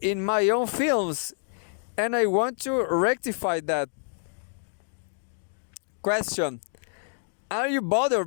in my own films, and I want to rectify that. Question: are you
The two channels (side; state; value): right; silent; digital silence